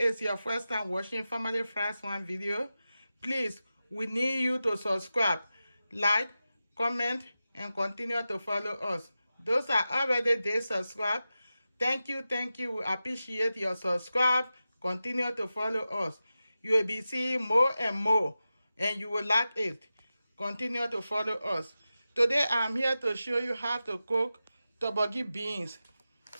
your first time watching Family First One video, please, we need you to subscribe, like, comment, and continue to follow us. Those are already there subscribed. Thank you. We appreciate your subscribe. Continue to follow us. You will be seeing more and more, and you will like it. Continue to follow us. Today I'm here to show you how to cook Torborgee beans.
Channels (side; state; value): both; inverted; correlation -0.93